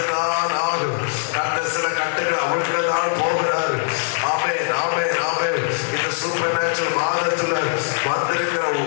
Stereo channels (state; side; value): silent; right; 61 dB below the other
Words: ஆகும். கர்த்தர் சில கட்டுகள் அவிழ்க்கதான் போகிறாரு. ஆமென், ஆமென், ஆமென். இந்த சூப்பர் நேச்சுரல் மாதத்துல வந்திருக்கிற